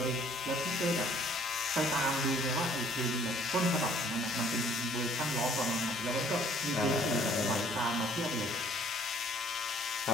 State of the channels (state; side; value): normal; both; correlation 0.58